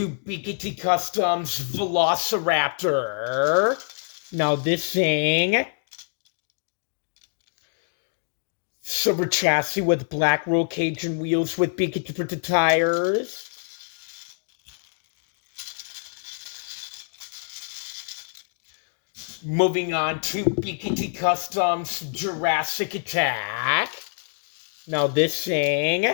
BKT Customs Velociraptor. Now this thing, silver chassis with black roll cage and wheels with BKT printed tires. Moving on to BKT Customs Jurassic Attack. Now this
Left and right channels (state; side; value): silent; right; digital silence